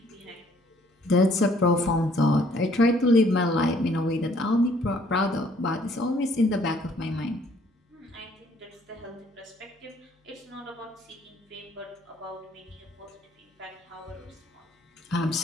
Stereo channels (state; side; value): normal; both; correlation 0.62